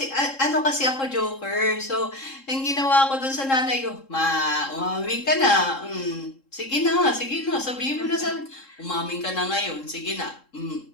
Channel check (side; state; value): right; late; 3.7 ms